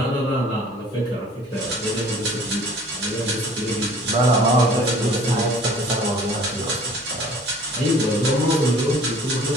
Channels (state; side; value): normal; both; correlation 0.50